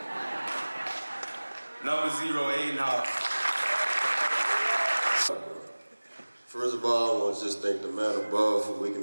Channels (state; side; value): inverted; both; correlation -1.00